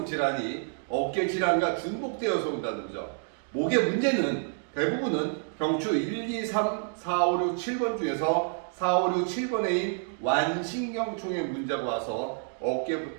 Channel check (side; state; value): left; silent; 59 dB below the other